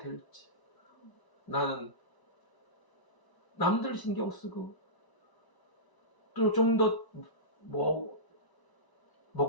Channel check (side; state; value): right; late; 1.0 ms